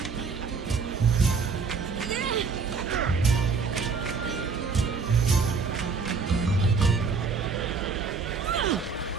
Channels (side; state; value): left; quieter; 5.0 dB